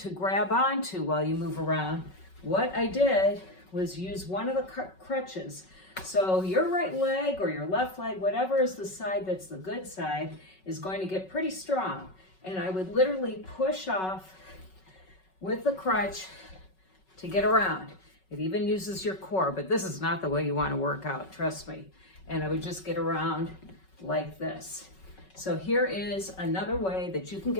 grab onto while you move around, what I did was use one of the crutches. So your right leg or your left leg, whatever is the side that's the good side, is going to get pretty strong. And I would literally push off with the crutch to get around. It even uses your core, but this is not the way you want to work out, trust me. And I would just get around like this. So here is another way that you can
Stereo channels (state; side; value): late; right; 5.3 ms